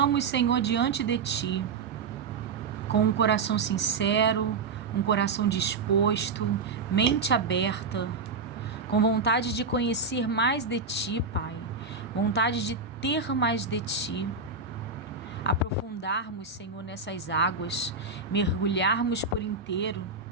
Senhor, diante de Ti, com um coração sincero, um coração disposto, mente aberta, com vontade de conhecer mais de Ti, Pai, vontade de ter mais de Ti, aprofundarmos, Senhor, nessas águas, mergulharmos por inteiro,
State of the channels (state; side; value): quieter; left; 4.6 dB